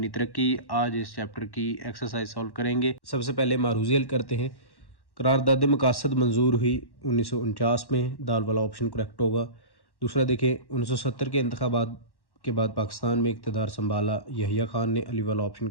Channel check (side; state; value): right; late; 1.1 ms